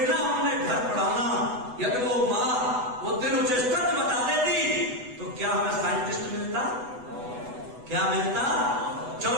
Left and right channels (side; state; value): left; late; 8.1 ms